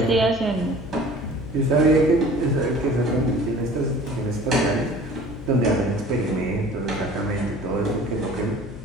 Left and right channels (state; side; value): noise; left; hum, 13 dB below the sound